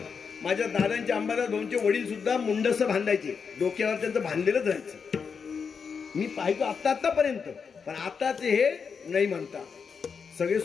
माझ्या दादांचे अंबादास भाऊंचे वडील सुद्धा मुंडस बांधायचे, डोक्यावर त्यांचं बांधलेलंच राहायचं. मी पाहितो आतापर्यंत, पण आताचे हे नाही म्हणता, सगळे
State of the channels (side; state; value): right; quieter; 6.0 dB